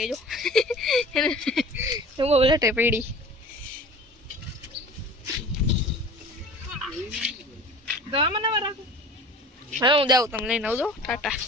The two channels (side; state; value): both; normal; correlation 0.40